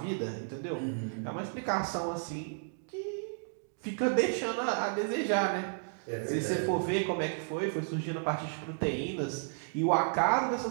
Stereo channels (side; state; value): left; silent; digital silence